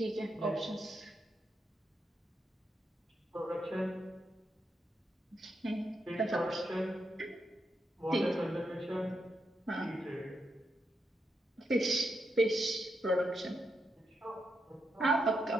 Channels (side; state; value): both; normal; correlation 0.83